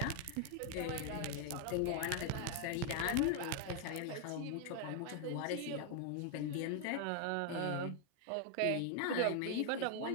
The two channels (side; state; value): both; different; correlation 0.00